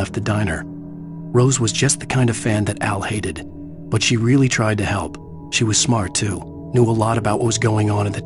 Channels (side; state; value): both; identical; correlation 1.00